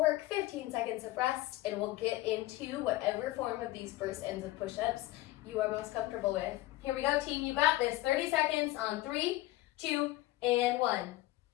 15 seconds of rest, and we'll get into whatever form of these first ends of push-ups you are most comfortable with. Here we go, team, you got this. 30 seconds on 3, 2, and 1.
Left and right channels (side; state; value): right; quieter; 17.4 dB